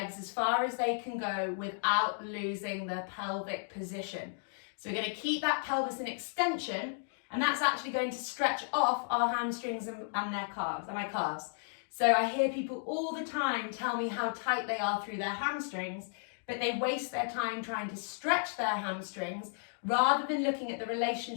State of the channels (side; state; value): right; silent; digital silence